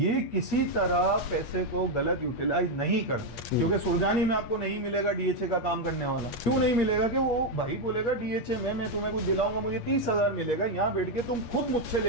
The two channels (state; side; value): late; right; 8.4 ms